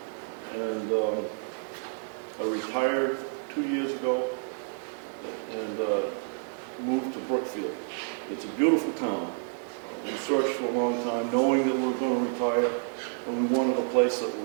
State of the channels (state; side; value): silent; left; 58 dB below the other